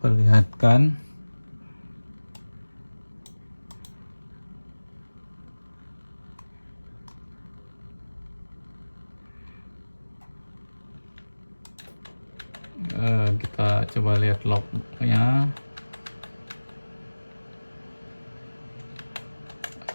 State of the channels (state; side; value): inverted; both; correlation -1.00